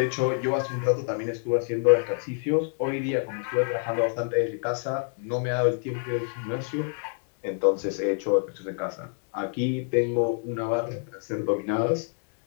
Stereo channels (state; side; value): silent; right; 60 dB below the other